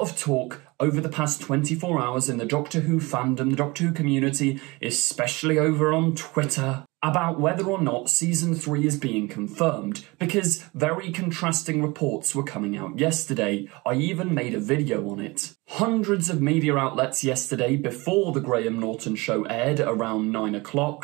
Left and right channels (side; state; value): left; quieter; 24.1 dB